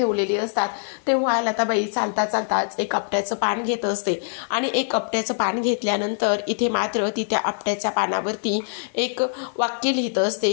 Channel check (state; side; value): silent; right; digital silence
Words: असतात. तेव्हा लताबाई चालता चालताच एक आपट्याचं पान घेत असते आणि एक आपट्याचं पान घेतल्यानंतर इथे मात्र ती त्या आपट्याच्या पानावरती एक वाक्य लिहित असते